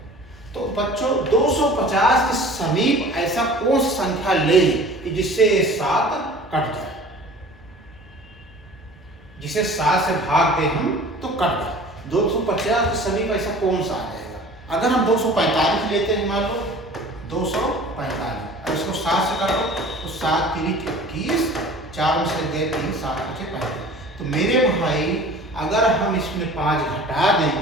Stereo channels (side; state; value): both; normal; correlation 0.44